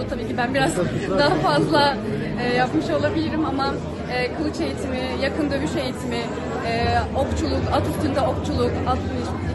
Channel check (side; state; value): both; identical; correlation 1.00